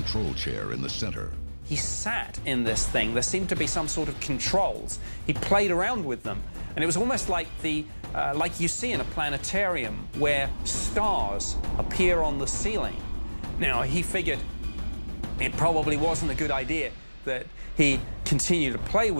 chair in the center. He sat in this thing. There seemed to be some sort of controls. He played around with them, and it was almost like like you see in a planetarium where stars appear on the ceiling. Now, he figured it probably wasn't a good idea that he continued to play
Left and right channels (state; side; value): inverted; both; correlation -1.00